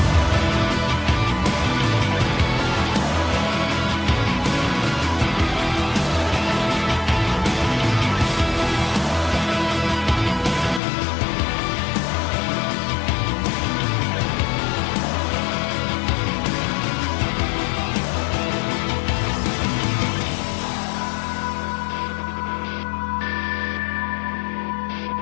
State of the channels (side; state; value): right; drops out; at 10.8 s